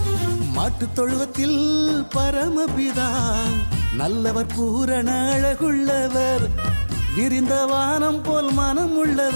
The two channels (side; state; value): both; inverted; correlation -1.00